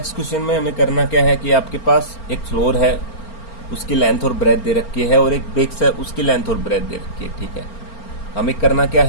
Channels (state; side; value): late; right; 4.4 ms